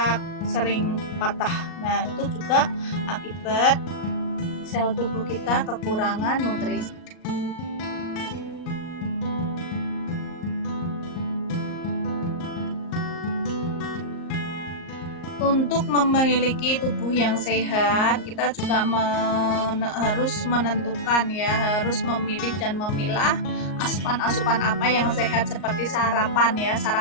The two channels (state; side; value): late; right; 38 ms